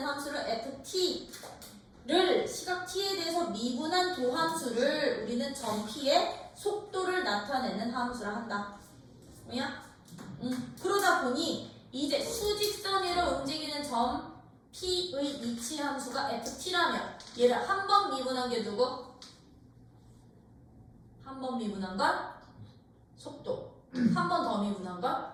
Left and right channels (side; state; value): both; identical; correlation 1.00